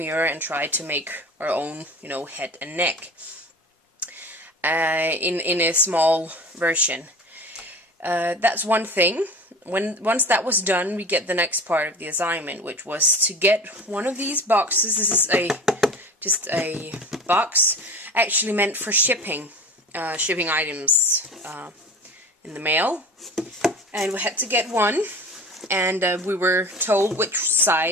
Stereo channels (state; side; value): normal; both; correlation 0.36